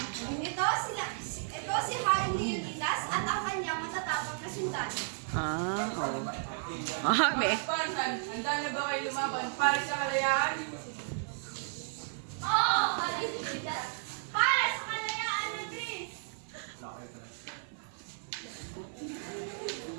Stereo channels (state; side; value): silent; left; 55 dB below the other